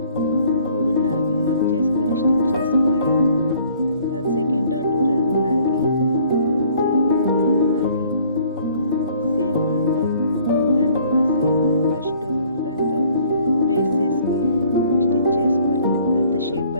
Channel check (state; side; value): inverted; both; correlation -0.58